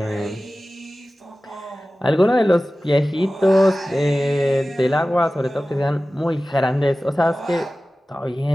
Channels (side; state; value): both; normal; correlation 0.96